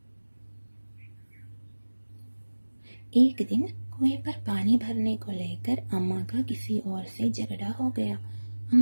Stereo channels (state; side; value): inverted; both; correlation -1.00